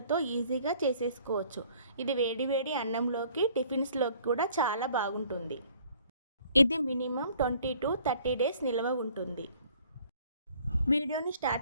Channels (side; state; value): both; inverted; correlation -0.57